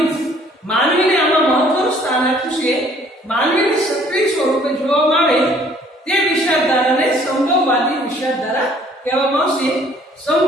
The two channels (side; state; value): both; normal; correlation 0.58